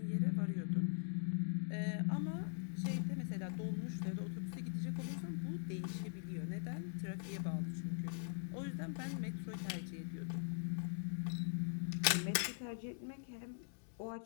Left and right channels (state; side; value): silent; right; digital silence